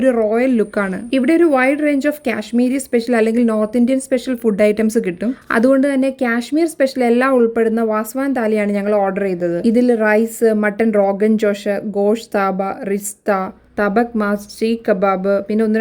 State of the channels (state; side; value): identical; both; correlation 1.00